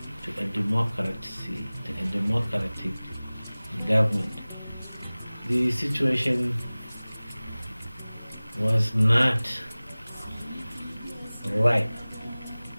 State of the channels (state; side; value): inverted; both; correlation -0.99